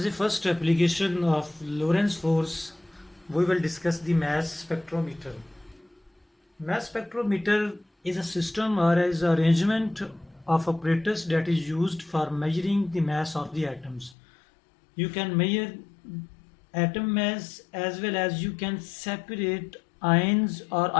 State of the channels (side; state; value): right; drops out; at 14.2 s